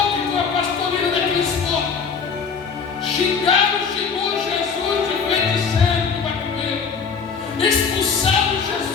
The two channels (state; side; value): quieter; right; 5.8 dB